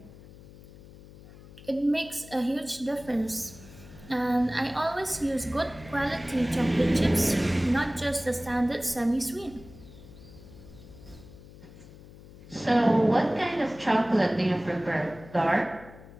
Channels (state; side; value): noise; left; hum, 19 dB below the sound